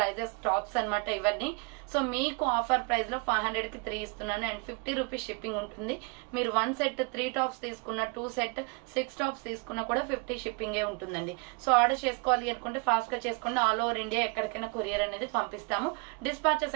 టాప్స్ అనమాట ఇవన్నీ. సో మీకు ఆఫర్ ప్రైస్ లో 500 కి 3 ఇస్తున్నాను అండ్ 50 రూపీస్ షిప్పింగ్ ఉంటుంది. మీరు 1 సెట్ 3 టాప్స్ తీసుకున్న, 2 సెట్ 6 టాప్స్ తీసుకున్నా కూడా 50 షిప్పింగ్ ఉంటుందండి. సో ఆర్డర్ చేసుకోవాలి అనుకుంటే ఫాస్ట్ గా చేసుకోండి. ఆల్ ఓవర్ ఇండియా ఎక్కడికైనా కొరియర్ అనేది పంపిస్తాము. డిస్పాచెస్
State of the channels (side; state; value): left; quieter; 32.1 dB